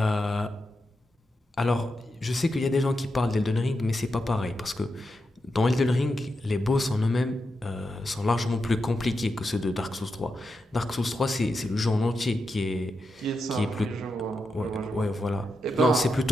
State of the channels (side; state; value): both; normal; correlation 0.87